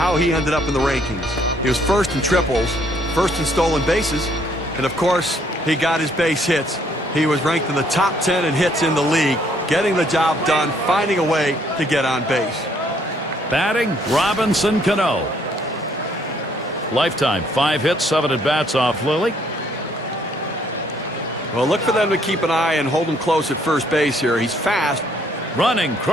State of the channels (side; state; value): both; normal; correlation 0.66